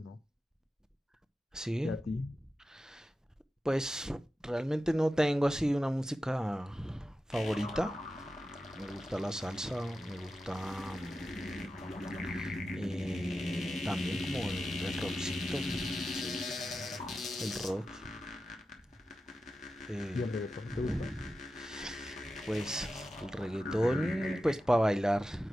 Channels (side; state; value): both; normal; correlation 0.92